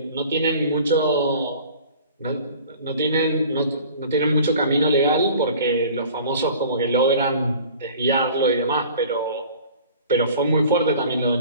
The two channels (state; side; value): inverted; both; correlation -0.46